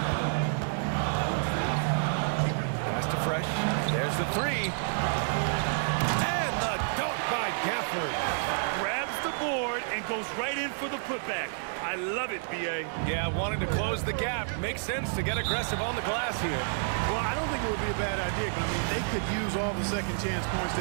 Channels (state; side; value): silent; left; digital silence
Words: Pass to Fresh. There's the 3. And the dunk by Gafford. Grabs the board and goes right in for the putback. I love it, B.A. Yeah, wanting to close the gap. Makes sense to get aggressive on the glass here. Well, I don't think it would be a bad idea, but I mean, they could use all the second chance points